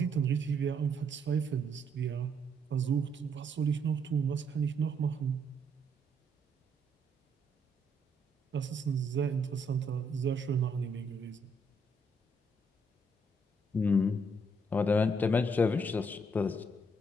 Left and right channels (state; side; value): normal; both; correlation 0.72